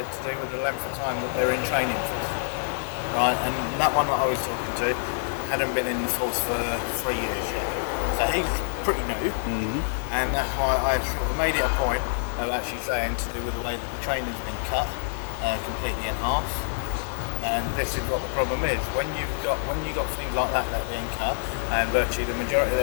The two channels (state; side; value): silent; right; 61 dB below the other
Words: to do with the length of time that they're in training for. Right, and that one that I was talking to hadn't been in the force for 3 years yet. So he's pretty new, and that's why I sort of made it a point of actually saying to do with the way that the training's been cut completely in half. And this is what the problem is. When you've got things like that being cut, and virtually the majority of